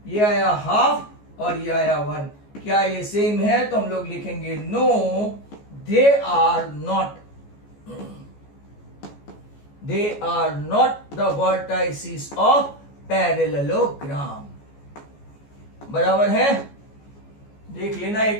ये आया हाफ और ये आया 1। क्या ये सेम है? तो हम लोग लिखेंगे no, they are not, they are not the vertices of parallelogram. बराबर है? देख लेना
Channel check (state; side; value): late; right; 14 ms